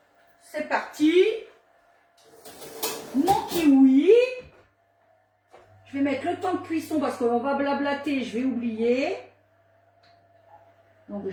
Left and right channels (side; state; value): both; identical; correlation 1.00